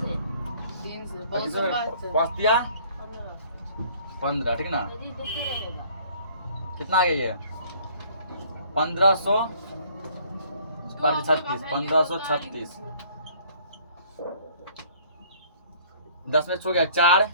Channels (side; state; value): both; inverted; correlation -0.56